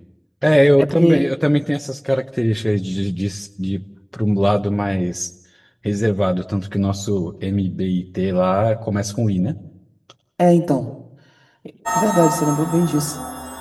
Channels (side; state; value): both; identical; correlation 1.00